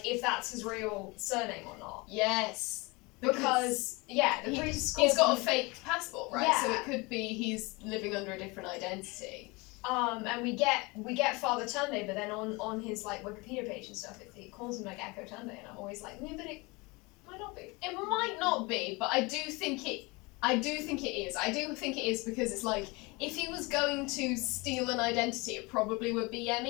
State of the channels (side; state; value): right; quieter; 25.8 dB